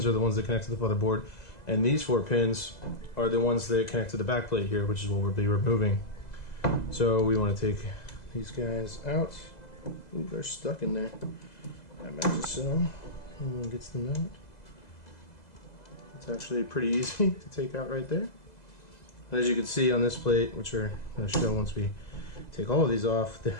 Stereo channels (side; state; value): right; late; 2.0 ms